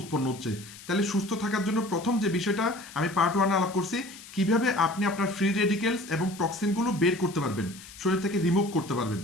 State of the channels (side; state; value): left; noise; hiss, 17 dB below the sound